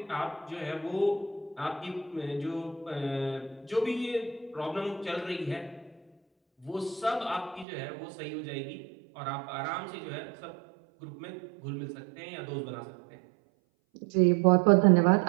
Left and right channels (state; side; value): drops out; left; at 7.7 s